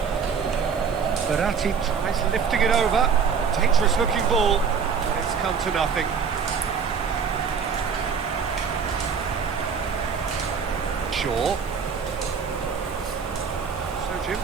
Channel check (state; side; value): quieter; left; 6.2 dB